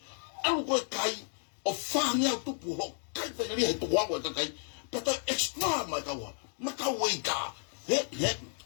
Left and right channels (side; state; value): right; silent; 56 dB below the other